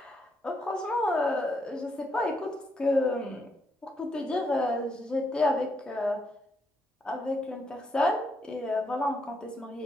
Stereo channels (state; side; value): normal; both; correlation 0.78